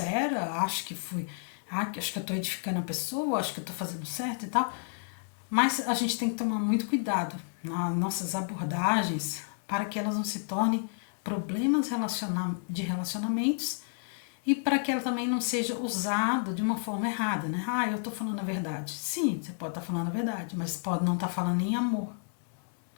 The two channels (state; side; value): silent; right; digital silence